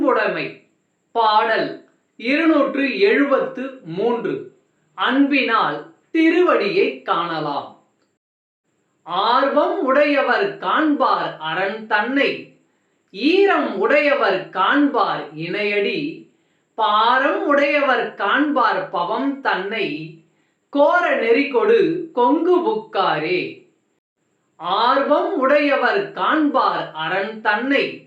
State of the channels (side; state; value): both; identical; correlation 1.00